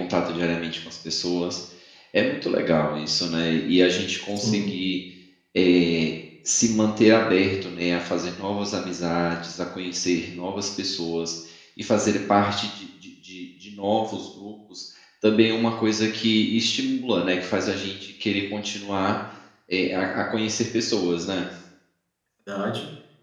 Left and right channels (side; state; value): both; identical; correlation 1.00